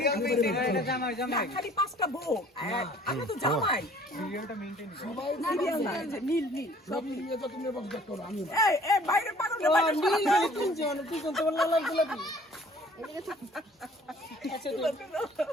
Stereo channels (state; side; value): normal; both; correlation 0.54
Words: খালি পাঁচটা বউ আমি তো জামাই সিরিয়ালটা মেইনটেইন সবাই সিরিয়াল না নীল নীল সব নিয়ে তো তুমি বক্স করো আমি এই বাইরে পারো না বাইরে পারো তুই কোন তোমার লাল গোলাপি আচ্ছা